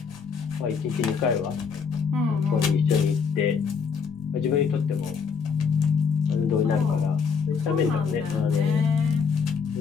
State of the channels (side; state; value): right; quieter; 5.9 dB